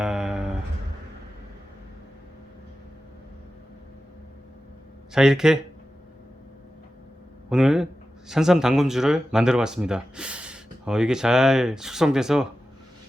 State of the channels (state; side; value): normal; both; correlation 0.93